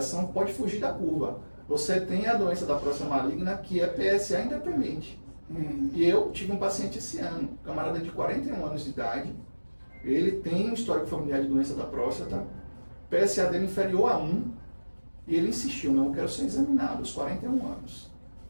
pode fugir da curva. Você tem a doença da próstata maligna, que é PSA independente. E eu tive um paciente esse ano, um camarada de 41 anos de idade. Ele tem um histórico familiar de doença da próstata. PSA dele inferior a 1. E ele insistiu, não, eu quero ser examinado aos 41 anos.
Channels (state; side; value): inverted; both; correlation -1.00